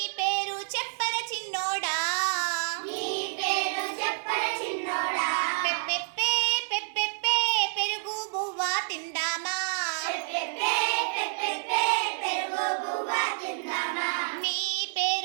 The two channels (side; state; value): left; silent; digital silence